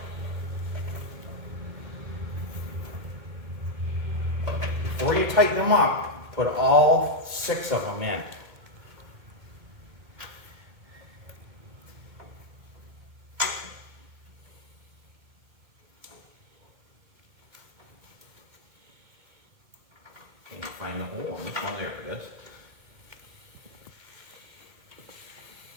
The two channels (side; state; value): left; late; 2.2 ms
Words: before you tighten them up, put all 6 of them in. Can't find the hole on this one. There it is.